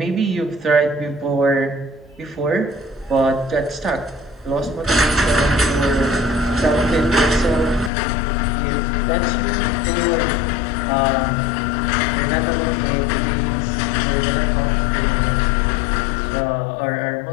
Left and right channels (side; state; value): right; drops out; at 7.9 s